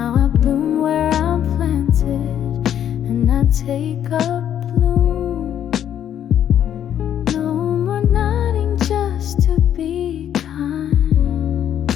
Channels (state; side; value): quieter; right; 10.0 dB